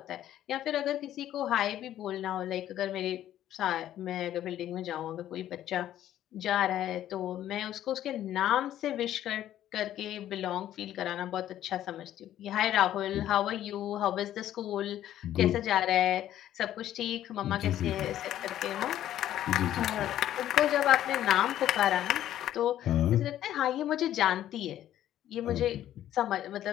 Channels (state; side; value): quieter; right; 12.1 dB